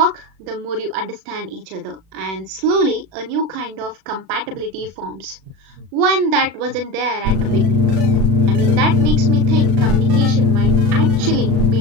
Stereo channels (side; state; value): left; late; 37 ms